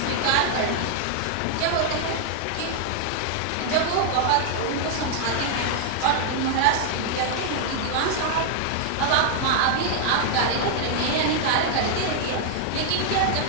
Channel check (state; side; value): different; both; correlation 0.00